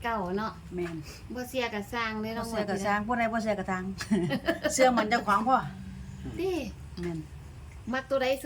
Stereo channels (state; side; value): identical; both; correlation 1.00